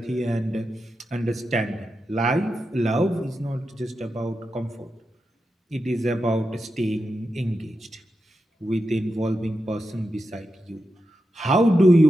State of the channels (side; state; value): both; normal; correlation 0.89